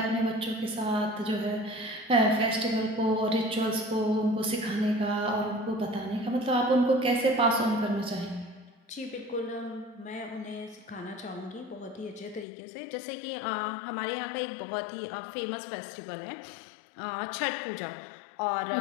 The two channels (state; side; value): drops out; right; at 12.5 s